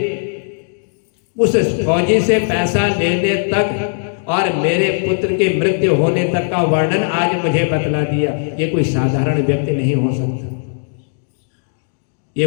उस फौजी से पैसा लेने तक और मेरे पुत्र के मृत्यु होने तक का वर्णन आज मुझे बतला दिया। ये कोई साधारण व्यक्ति नहीं हो सकता, ये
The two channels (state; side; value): silent; right; digital silence